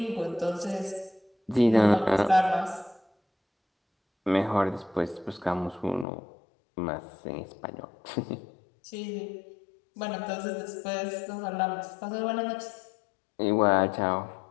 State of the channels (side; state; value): right; drops out; at 6.1 s